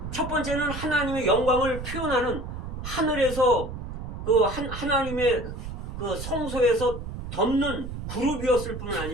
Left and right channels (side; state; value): right; noise; rumble, 8 dB below the sound